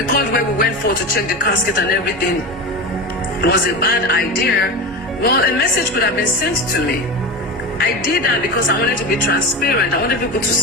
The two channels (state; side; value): normal; both; correlation 0.24